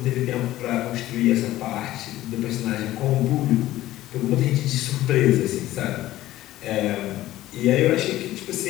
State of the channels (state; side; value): quieter; right; 15.2 dB